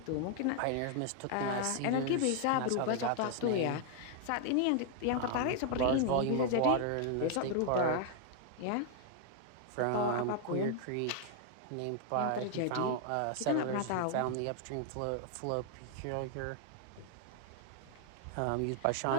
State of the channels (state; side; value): different; both; correlation 0.00